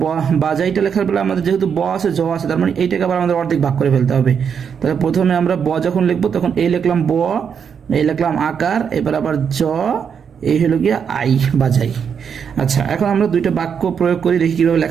বাজাইটা লেখার বেলা আমাদের যেহেতু ব আছে জ আছে, তার মানে এইটাকে আবার আমাদের অর্ধেক ভাগ করে ফেলতে হবে। তাহলে প্রথমে আমরা ব যখন লিখবো তখন এই লিখলাম ব, এই লিখলাম আকার, এবার আবার জ, এই হলো গিয়ে আই বাজাই। আচ্ছা এখন আমরা দুইটা বাক্য প্রয়োগ করি, দেখি কিভাবে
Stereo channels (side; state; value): left; quieter; 7.1 dB